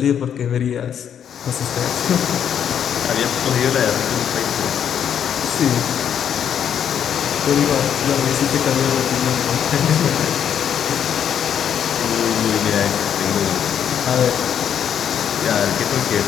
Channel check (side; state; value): right; quieter; 8.8 dB